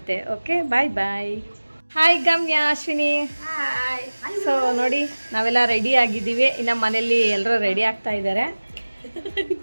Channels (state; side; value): inverted; both; correlation -1.00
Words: ಓಕೆ, ಬಾಯ್ ಬಾಯ್. ಹಾಯ್ ಗಮ್ಯ, ಅಶ್ವಿನಿ. ಸೊ ನೋಡಿ, ನಾವೆಲ್ಲ ರೆಡಿ ಆಗಿದ್ದೀವಿ. ಇನ್ನು ಮನೇಲಿ ಎಲ್ಲರೂ ರೆಡಿ ಆಗ್ತಾ ಇದ್ದಾರೆ.